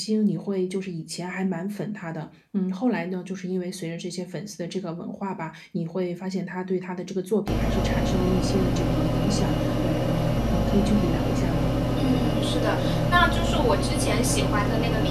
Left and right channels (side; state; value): both; identical; correlation 1.00